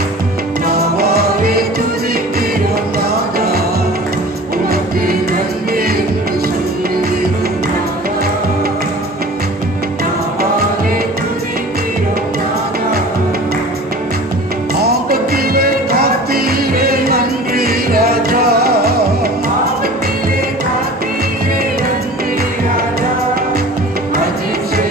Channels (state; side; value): normal; both; correlation 0.41